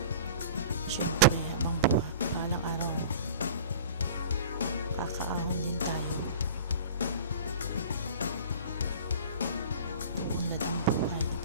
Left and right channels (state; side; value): inverted; both; correlation -0.41